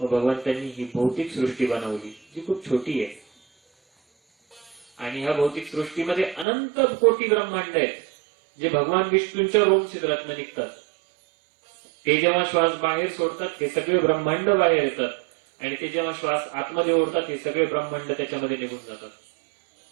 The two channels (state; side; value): drops out; left; at 6.5 s